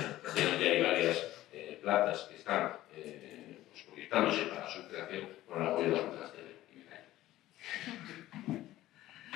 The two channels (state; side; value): quieter; right; 15.2 dB